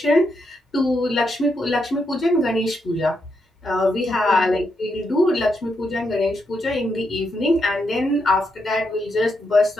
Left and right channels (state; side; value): normal; both; correlation 0.81